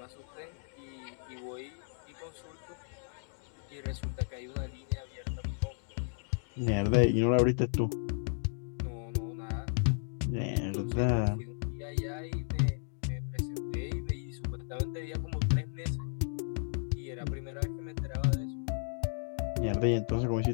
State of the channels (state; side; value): silent; right; digital silence